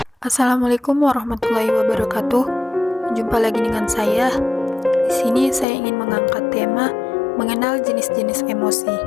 Assalamualaikum warahmatullahi wabarakatuh. Jumpa lagi dengan saya. Di sini saya ingin mengangkat tema mengenal jenis-jenis emosi.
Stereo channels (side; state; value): right; drops out; at 5.7 s